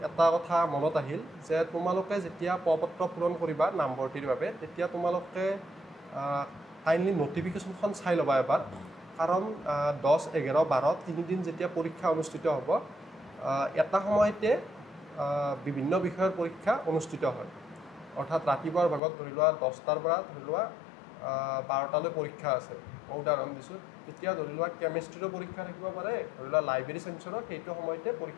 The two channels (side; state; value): right; drops out; at 19.0 s